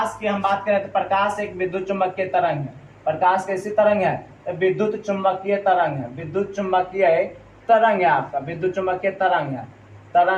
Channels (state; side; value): identical; both; correlation 1.00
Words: की हम बात करें तो प्रकाश एक विद्युत चुंबकीय तरंग है। प्रकाश कैसी तरंग है, तो विद्युत चुंबकीय तरंग है, विद्युत चुंबकीय तरंग है, आपका विद्युत चुंबकीय